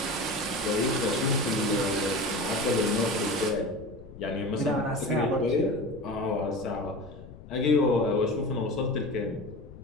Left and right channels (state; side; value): noise; left; rumble, 16 dB below the sound